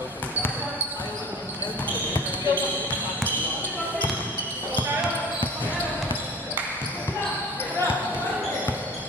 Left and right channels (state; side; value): normal; both; correlation 0.40